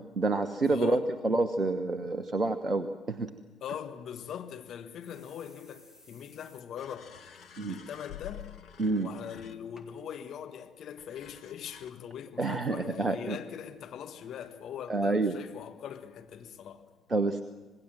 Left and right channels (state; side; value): normal; both; correlation 0.70